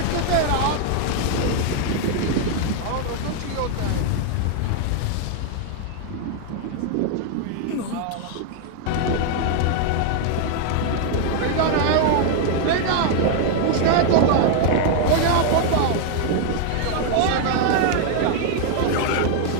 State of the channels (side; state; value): both; different; correlation 0.00